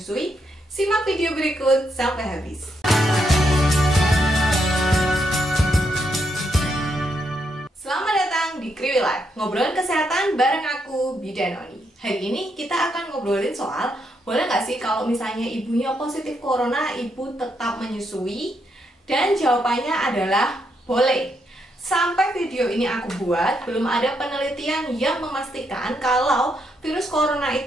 Simak video berikut sampai habis. Selamat datang di Kriwi Life, ngobrolin kesehatan bareng aku, Bidan Oni. Hari ini kita akan ngobrolin soal, boleh nggak sih kalau misalnya ibunya positif corona, ibu tetap menyusui? Dan jawabannya adalah boleh. Sampai video ini aku buat, belum ada penelitian yang memastikan kalau virus corona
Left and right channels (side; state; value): both; normal; correlation 0.79